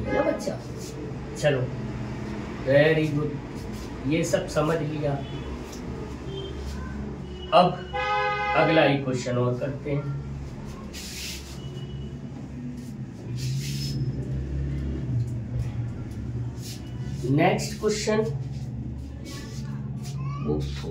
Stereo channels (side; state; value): both; identical; correlation 1.00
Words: ना बच्चा। चलो, वेरी गुड। ये सब समझ लिया। अब अगला ही क्वेश्चन और करते हैं। नेक्स्ट क्वेश्चन,